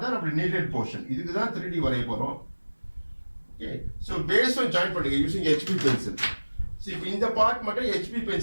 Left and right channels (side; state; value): both; inverted; correlation -1.00